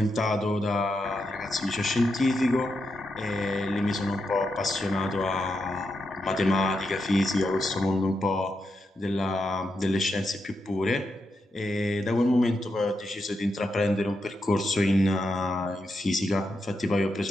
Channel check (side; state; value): both; normal; correlation 0.85